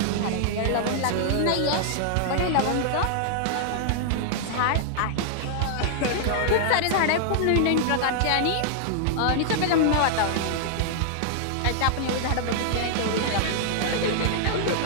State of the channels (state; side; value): different; both; correlation -0.01